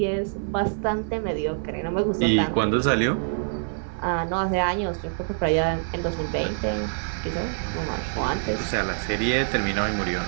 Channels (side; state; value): left; silent; 57 dB below the other